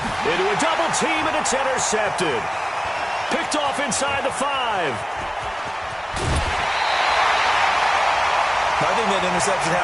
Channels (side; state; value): both; identical; correlation 1.00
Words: Into a double team, and it's intercepted. Picked off inside the 5. I think that interception